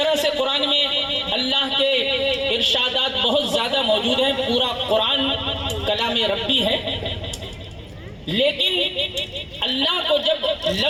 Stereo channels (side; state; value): both; identical; correlation 1.00